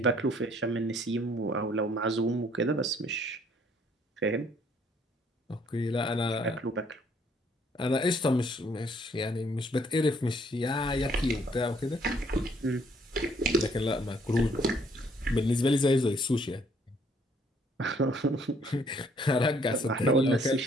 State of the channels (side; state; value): both; normal; correlation 0.64